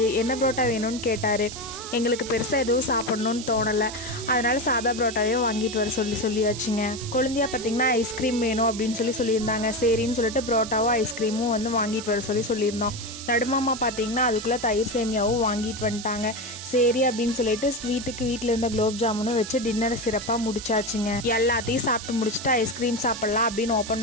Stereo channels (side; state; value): right; noise; hiss, 11 dB below the sound